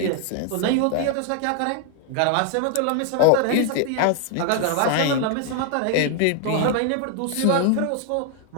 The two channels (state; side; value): different; both; correlation 0.00